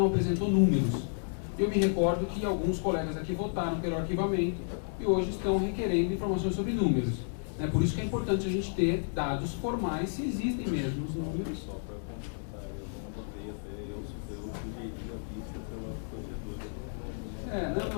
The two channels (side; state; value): right; silent; digital silence